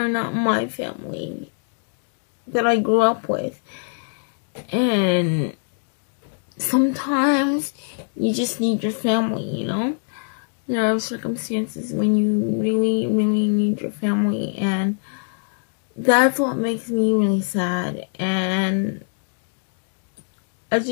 not my family that I grew up with. And sometimes you just need your family, There are circumstances when you really, really need your family, and that's what makes me really sad. And I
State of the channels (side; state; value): right; silent; digital silence